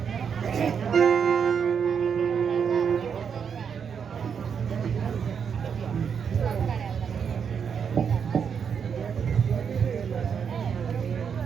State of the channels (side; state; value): left; quieter; 7.0 dB